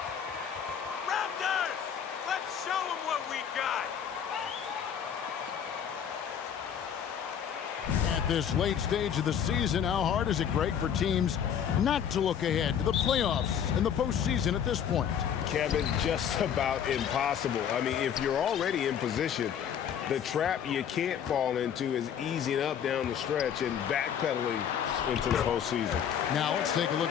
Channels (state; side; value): quieter; right; 8.5 dB